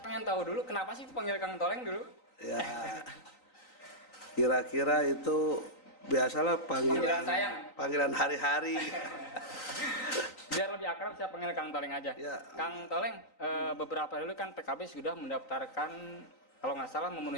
pengen tahu dulu kenapa sih itu panggil Kang Toleng dulu? Ya, kira-kira itu biasalah Panggilan sayang. panggilan hari-hari. Biar lebih akrab saya panggil Kang Toleng aja. Ya. Kang Toleng, beberapa dulu kan PKB sudah mendaftarkan, kalau nggak salah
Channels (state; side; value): late; right; 3.9 ms